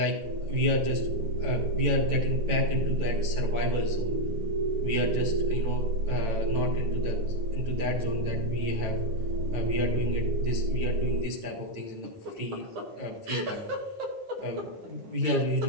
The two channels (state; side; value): late; left; 9.1 ms